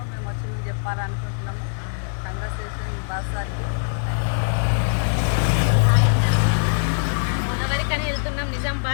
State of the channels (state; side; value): silent; right; digital silence